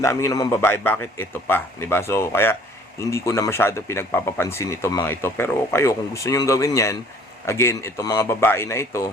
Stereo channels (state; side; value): normal; both; correlation 0.55